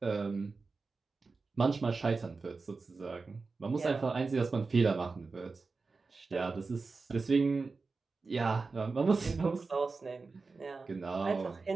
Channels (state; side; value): quieter; left; 4.2 dB